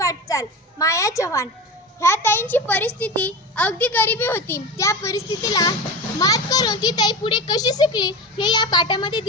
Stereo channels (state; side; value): normal; both; correlation 0.27